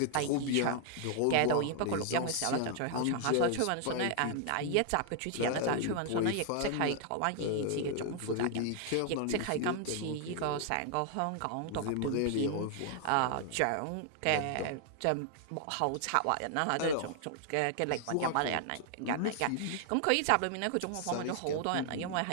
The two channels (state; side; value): different; both; correlation 0.00